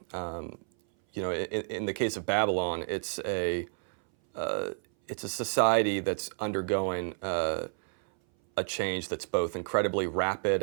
you know, in the case of Babylon, it's a society that's undergoing a change that's both incredibly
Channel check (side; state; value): left; silent; 58 dB below the other